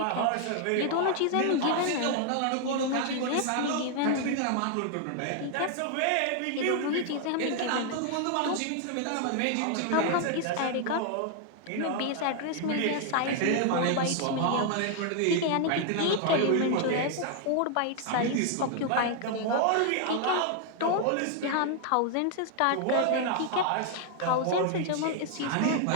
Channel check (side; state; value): both; different; correlation 0.00